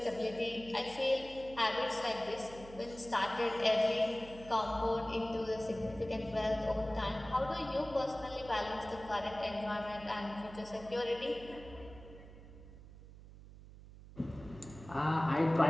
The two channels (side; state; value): right; noise; hum, 17 dB below the sound